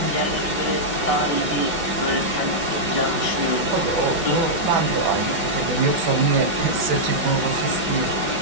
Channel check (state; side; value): late; left; 5.3 ms